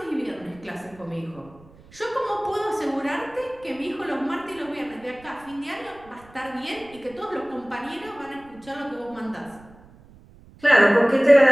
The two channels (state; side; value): noise; right; rumble, 24 dB below the sound